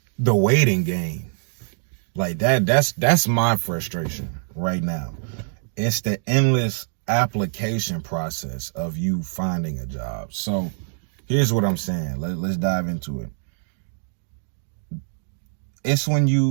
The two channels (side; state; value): left; silent; digital silence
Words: the waiting game. Like that's my frustration right now. It's the endless application process of you finding a job. So here's what I'm saying. Let's dive into it. It's when